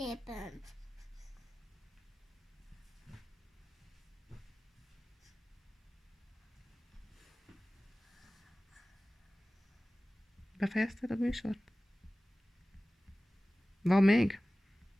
Befejezted a műsort? Van még?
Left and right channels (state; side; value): normal; both; correlation 0.97